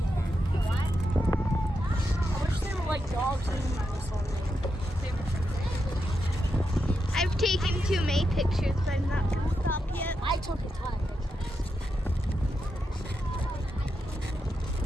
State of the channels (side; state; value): both; normal; correlation 0.85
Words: I wish they were like dogs and this one. I've taken too many pictures, but I'm not going to stop yet. I took a ton of pictures.